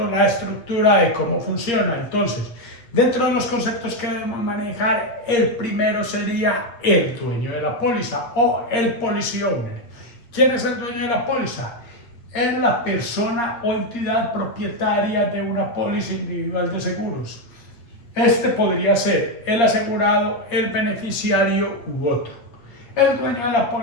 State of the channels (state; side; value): late; right; 8.6 ms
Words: la estructura de cómo funciona. Entonces, dentro de los conceptos que debemos manejar, el primero sería el dueño de la póliza o el policy owner. ¿Quién es el dueño de la póliza? Es la persona o entidad propietaria de una póliza individual de seguros. Este podría ser el asegurado, el beneficiario u otro. El dueño de la